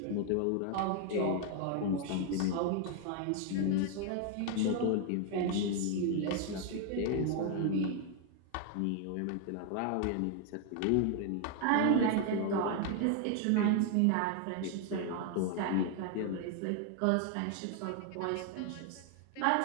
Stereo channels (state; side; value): different; both; correlation 0.00